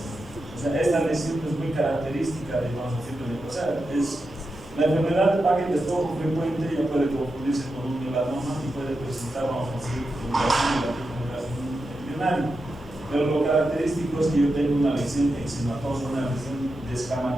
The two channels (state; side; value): normal; both; correlation 0.89